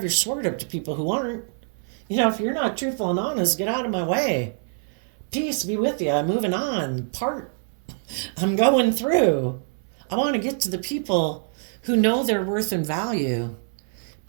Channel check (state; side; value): silent; left; 62 dB below the other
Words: your sword up to people who aren't. If you're not truthful and honest, get out of my way. Peace be with you. I'm moving on. I'm going through. I want to get to the people who know their worth and value.